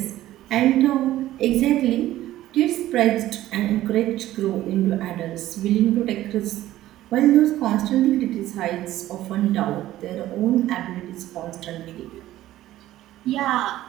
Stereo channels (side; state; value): left; quieter; 14.5 dB